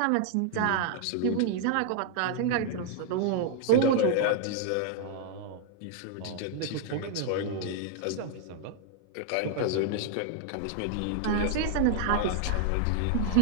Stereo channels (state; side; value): different; both; correlation -0.01